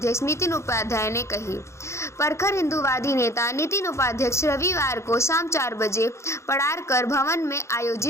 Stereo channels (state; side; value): late; right; 0.14 ms